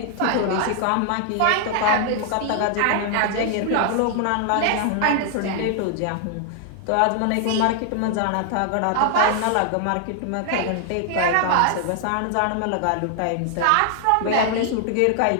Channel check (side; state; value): both; different; correlation 0.00